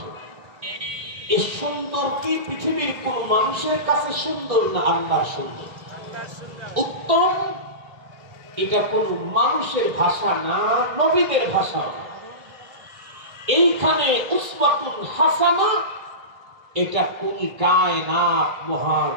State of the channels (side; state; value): left; late; 1.6 ms